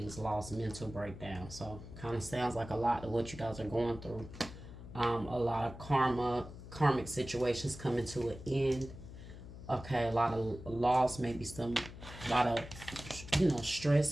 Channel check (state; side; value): noise; left; hum, 13 dB below the sound